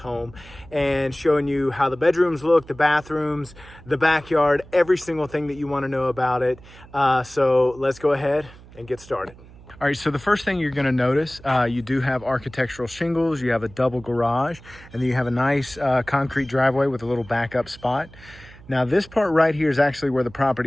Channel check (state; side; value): noise; right; hum, 21 dB below the sound